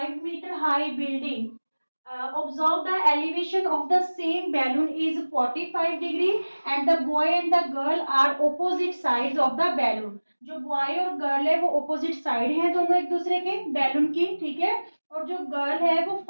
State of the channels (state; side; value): inverted; both; correlation -1.00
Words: metre high building, observe the elevation of the same balloon is 45 degree and the boy and the girl are opposite sides of the balloon। जो boy और girl है वो opposite side हैं दोनों एक दूसरे के balloon की, ठीक है। और जो गर्ल है वो